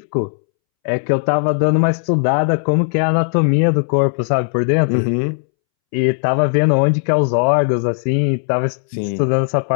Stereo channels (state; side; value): silent; right; 67 dB below the other